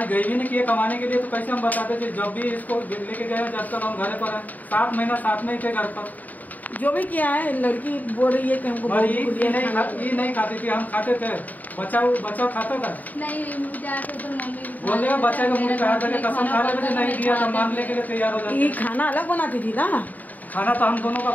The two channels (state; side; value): late; right; 0.079 ms